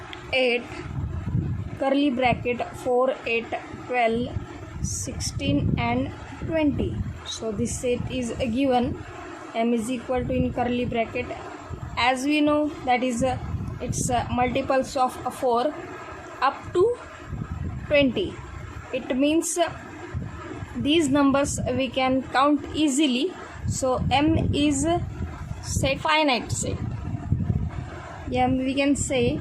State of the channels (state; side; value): identical; both; correlation 1.00